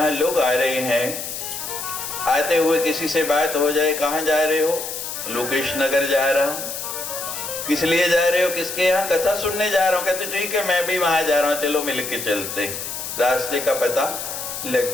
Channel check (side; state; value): left; noise; hiss, 6 dB below the sound